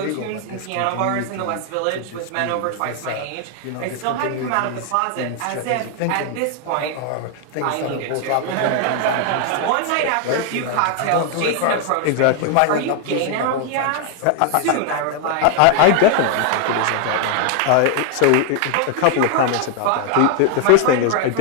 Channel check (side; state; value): both; different; correlation 0.00